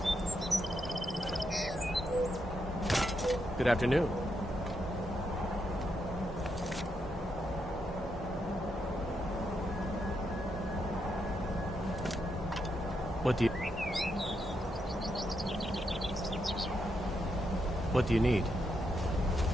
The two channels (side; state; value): both; normal; correlation 0.81